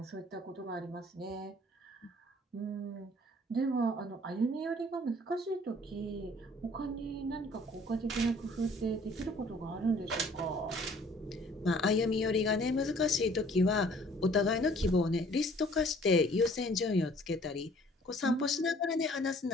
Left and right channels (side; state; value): both; normal; correlation 0.56